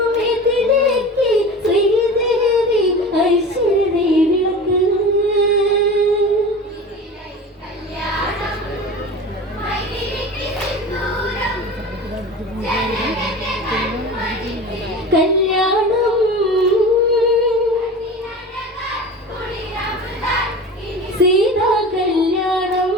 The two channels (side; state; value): both; normal; correlation 0.34